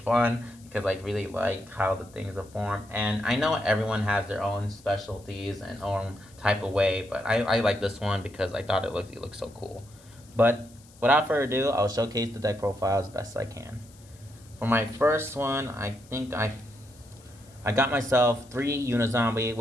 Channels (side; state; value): left; noise; hiss, 26 dB below the sound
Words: because I really like how the things are formed. And I know everyone has their own specialties and own type of way, but I like this one because I thought it looked so cool. But without further ado, I'll showcase the deck profile as best I can. For my first one, I got myself 3 Unizombie,